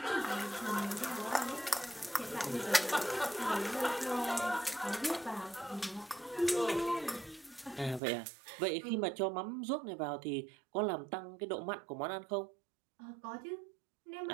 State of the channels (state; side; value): drops out; left; at 8.0 s